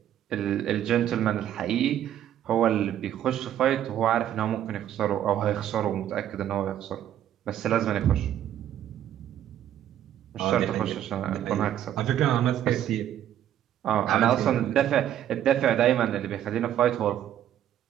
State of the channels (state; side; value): quieter; left; 11.1 dB